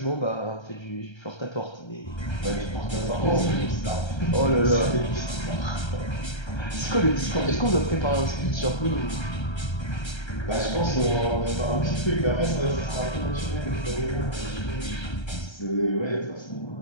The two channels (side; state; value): right; late; 1.3 ms